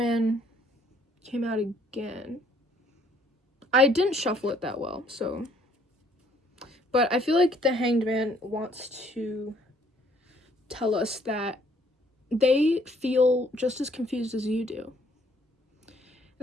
came out again. I didn't shuffle it that well, so. But I feel like the Hanged Man wants to tell us that they feel just as confused as you do.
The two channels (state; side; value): normal; both; correlation 0.63